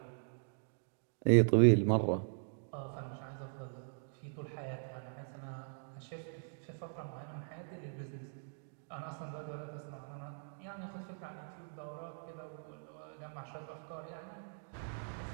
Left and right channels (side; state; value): left; silent; digital silence